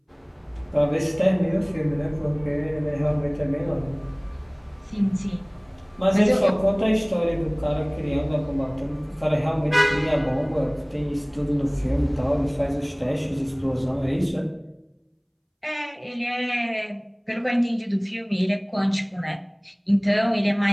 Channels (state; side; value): identical; both; correlation 1.00